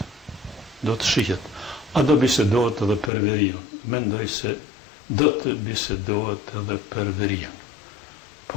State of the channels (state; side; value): drops out; right; at 3.1 s